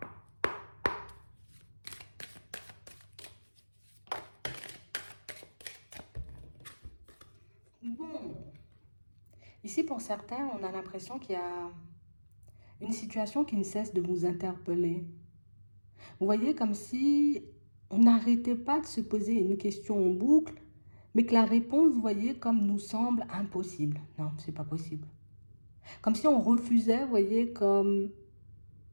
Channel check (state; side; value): inverted; both; correlation -1.00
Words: Bon, ici pour certains, on a l'impression qu'il y a une situation qui ne cesse de vous interpeller. Vous voyez, comme si on n'arrêtait pas de se poser une question en boucle, mais que la réponse, vous voyez, comme nous semble impossible. Non, c'est pas possible. Comme si on refusait, vous voyez, comme